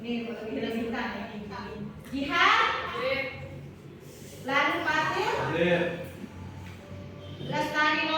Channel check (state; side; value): identical; both; correlation 1.00